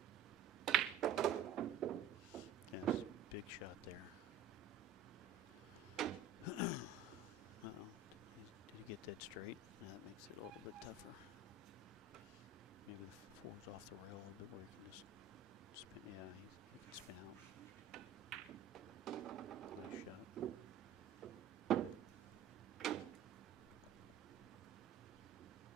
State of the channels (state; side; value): quieter; left; 6.1 dB